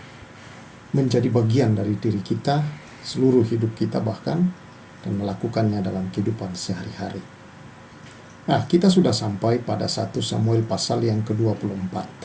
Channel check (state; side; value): identical; both; correlation 1.00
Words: menjadi bagian dari diri kita, seluruh hidup kita bahkan, dan melakukannya dalam kehidupan sehari-hari. Nah, kita sudah sampai pada 1 Samuel pasal yang ke-24.